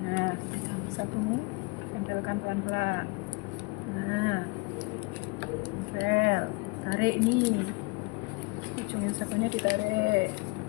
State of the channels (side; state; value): right; quieter; 27.2 dB